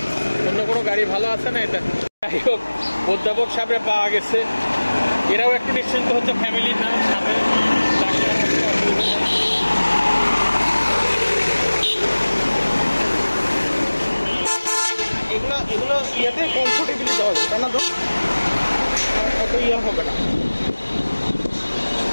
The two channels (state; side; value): inverted; both; correlation -1.00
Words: অন্য কোনো গাড়ি ভালো আছে না এটা? যাই হোক, অধ্যাপক সাহেব পাওয়া গেছে, এরাও একটু নিশ্চিন্ত হচ্ছে ফ্যামিলির নাম সাথে। এগুলো ইয়েতে কমফোর্টেবলি দেওয়া যায়, তাই না? তো অত ইয়ে হবে না।